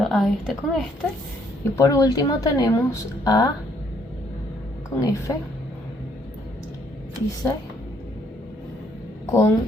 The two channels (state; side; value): normal; both; correlation 0.68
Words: a este con este. Y por último tenemos A con F y C con